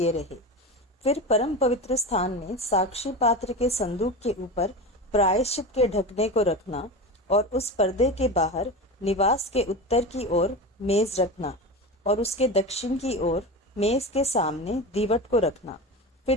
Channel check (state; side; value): normal; both; correlation 0.25